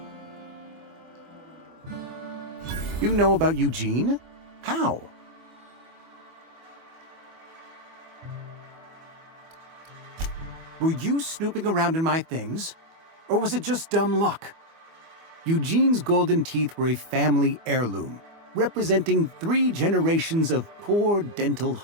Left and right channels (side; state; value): left; late; 24 ms